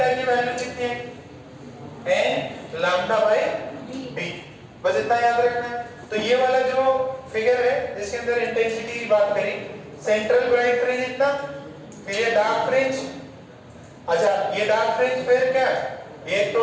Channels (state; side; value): identical; both; correlation 1.00